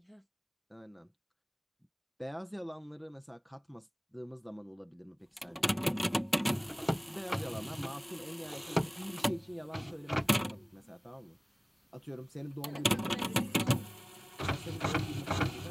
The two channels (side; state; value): both; identical; correlation 1.00